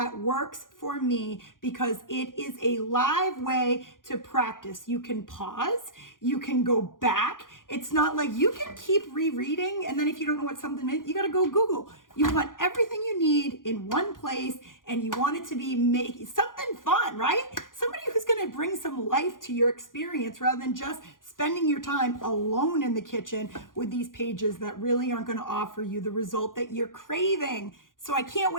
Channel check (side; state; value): right; late; 0.89 ms